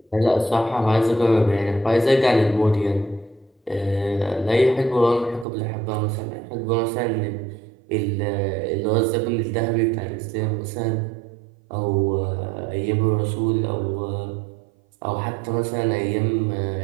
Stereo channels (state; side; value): drops out; left; at 5.5 s